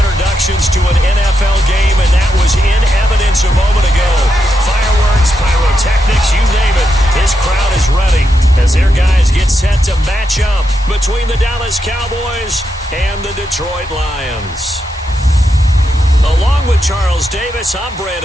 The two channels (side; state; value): both; normal; correlation 0.84